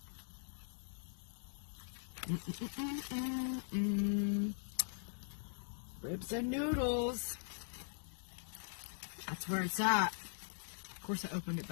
Ribs and noodles. That's where it's at. Of course, I opened it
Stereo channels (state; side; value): silent; right; digital silence